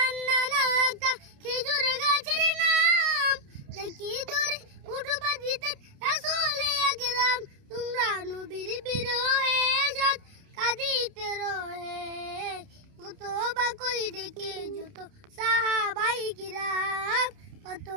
একটা খেজুর গাছের নাম যাকে ধরে উঠবা দিতেন রাসূল আকরাম। তোমরা নবীর বিরহে সাত কাঁদিতে রহে কত বা কই ডেকে যত সাহাবাই কিরাম কত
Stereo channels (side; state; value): left; late; 29 ms